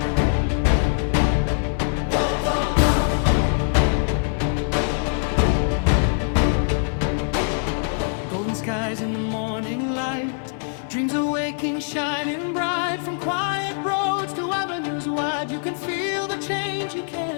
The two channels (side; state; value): right; silent; 55 dB below the other